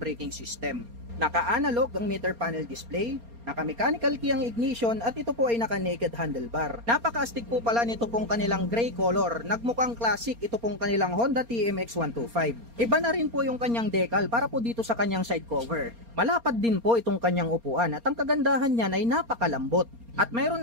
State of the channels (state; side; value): late; left; 4.3 ms